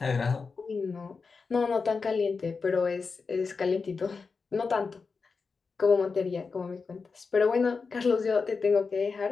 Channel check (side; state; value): right; quieter; 4.8 dB